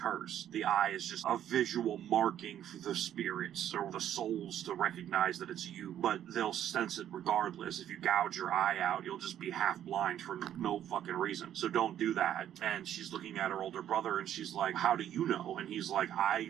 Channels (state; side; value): quieter; left; 10.8 dB